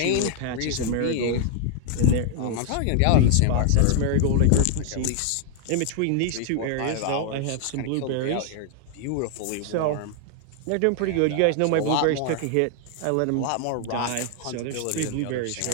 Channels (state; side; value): different; both; correlation 0.00